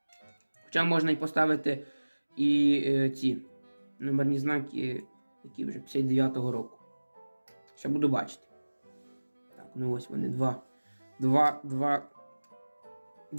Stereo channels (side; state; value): both; inverted; correlation -1.00